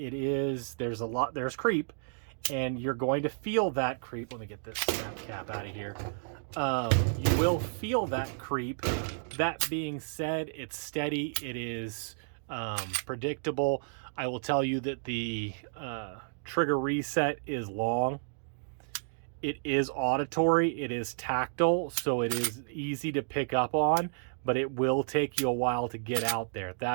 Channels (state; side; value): silent; left; digital silence